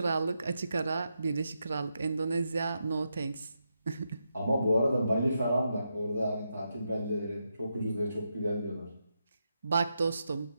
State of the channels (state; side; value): inverted; both; correlation -0.85